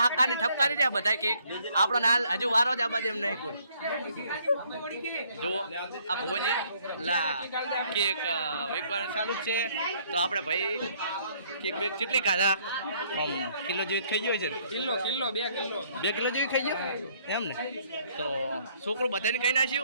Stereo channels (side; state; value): both; inverted; correlation -0.65